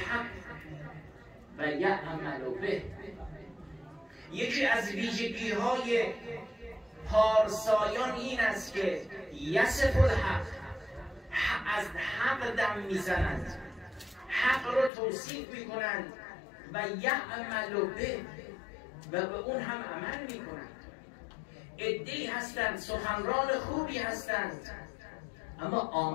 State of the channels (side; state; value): right; drops out; at 14.9 s